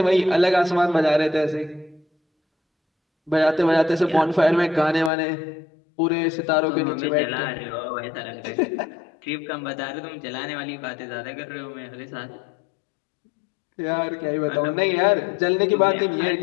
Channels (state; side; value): drops out; right; at 5.1 s